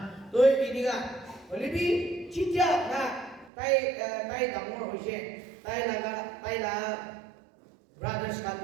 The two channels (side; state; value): left; drops out; at 3.5 s